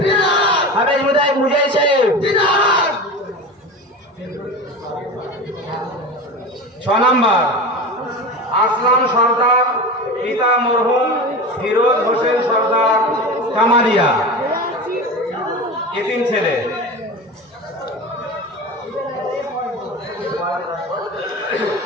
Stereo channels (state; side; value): normal; both; correlation 0.29